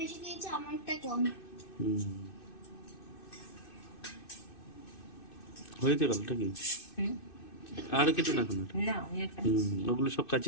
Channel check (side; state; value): right; late; 2.6 ms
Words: বেশি খেয়েছে, আমারটা কম। হয়েছে গেলটা কি? আর কেটে না এখন না আমি একটা ওগুলো সব